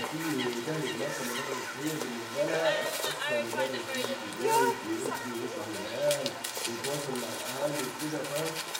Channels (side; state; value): both; identical; correlation 1.00